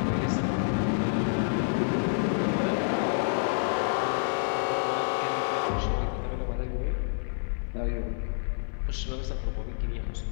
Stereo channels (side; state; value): right; silent; 59 dB below the other